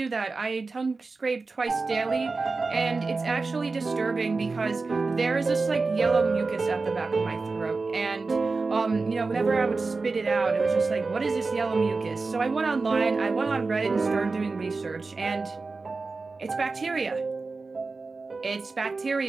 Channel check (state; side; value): quieter; left; 3.9 dB